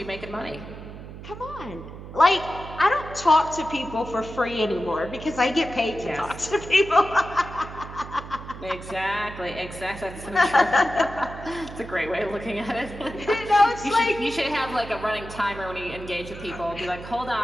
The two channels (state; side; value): noise; right; hum, 13 dB below the sound